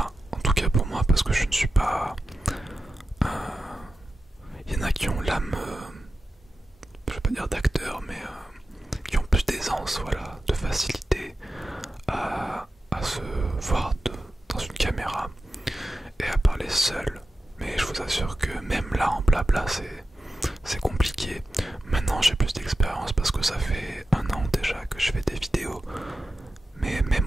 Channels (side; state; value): both; normal; correlation 0.93